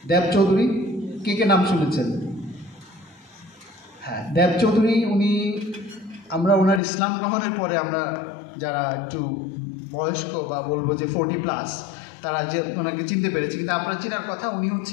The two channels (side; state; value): right; drops out; at 6.8 s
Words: দেব চৌধুরী, কে নাম শুনেছেন? হ্যাঁ, দেব চৌধুরী, আমরা ওনার ইসলাম গ্রহণের পরে আমরা যারা একটু বয়স্ক বা বলবো যে 40+, তারা যে ওনাকে চিনতে পেরেছি। কিন্তু আপনারা চেনার কথা, উনি